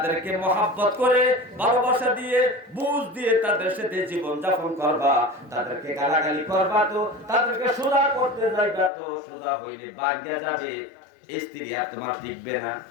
মহাব্বত করে ভালোবাসা দিয়ে বুঝ দিয়ে তাদের সাথে জীবন যাপন করবা। তাদেরকে গালাগালি করবা তো, তাদেরকে সোজা করতে যাইবা তো, সোজা হইলে ভাঙা যাবে। স্ত্রী আর তোমার টিকবে না।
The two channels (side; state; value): right; drops out; at 8.9 s